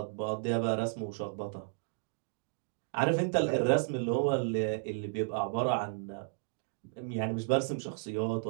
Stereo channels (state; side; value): silent; left; digital silence